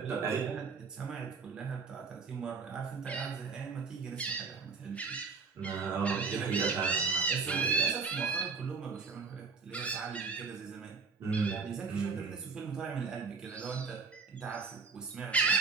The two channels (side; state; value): left; quieter; 4.9 dB